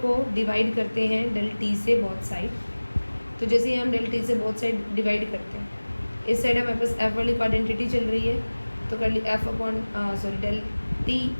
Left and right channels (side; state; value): both; inverted; correlation -1.00